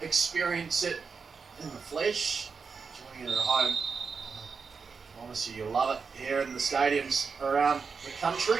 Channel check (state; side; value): quieter; left; 5.4 dB